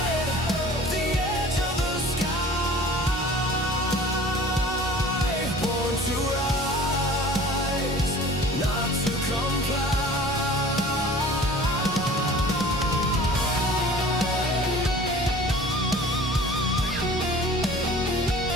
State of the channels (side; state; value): both; normal; correlation 0.45